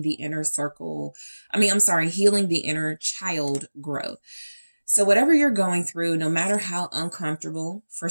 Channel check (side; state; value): both; inverted; correlation -1.00